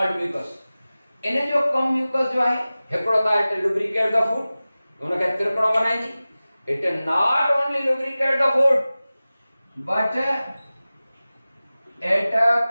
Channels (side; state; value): both; inverted; correlation -0.97